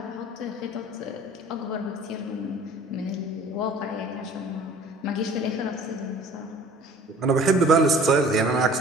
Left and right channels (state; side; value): normal; both; correlation 0.48